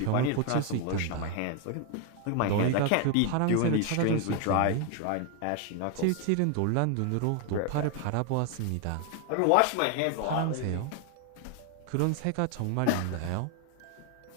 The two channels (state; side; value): different; both; correlation 0.01